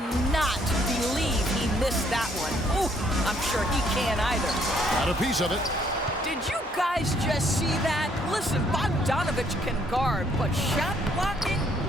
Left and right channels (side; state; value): both; normal; correlation 0.66